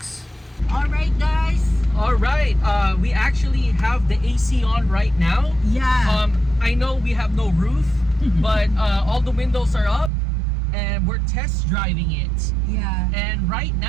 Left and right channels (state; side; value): drops out; left; at 10.1 s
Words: All right, guys. All right, we actually have the AC on right now. Yeah. I know we have no roof, but all the windows are up, and we're test driving it. Yeah. And right